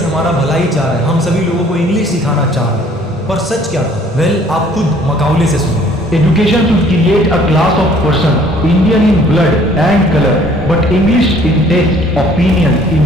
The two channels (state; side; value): normal; both; correlation 0.57